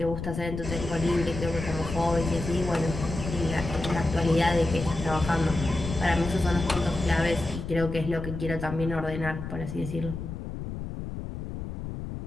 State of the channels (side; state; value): left; noise; rumble, 7 dB below the sound